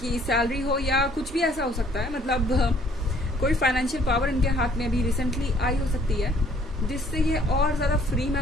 सैलरी हो या कुछ भी ऐसा हो सकता है। मतलब कोई फाइनेंशियल पावर इनके हाथ में अभी रिसेंटली आई हो सकती है जिससे ये और ज़्यादा फ्री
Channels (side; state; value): both; normal; correlation 0.60